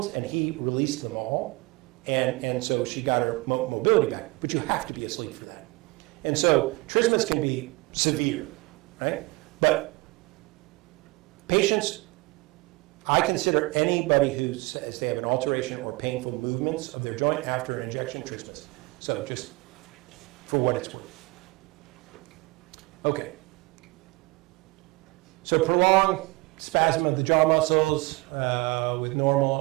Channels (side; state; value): left; quieter; 24.3 dB